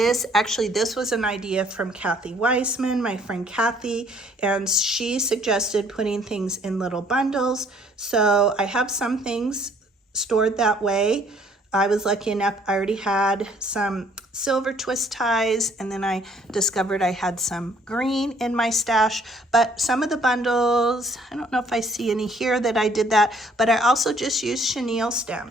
actually this was an idea from Kathy Weissman, my friend Kathy, and she suggested putting things in little bundles. So I have some things stored that way. I was lucky enough, I already had some silver twist ties, and then I discovered I had some green in my stash. But some of the bundles, I don't know if I see any here that I did that, but I also just used chenille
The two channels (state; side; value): normal; both; correlation 0.61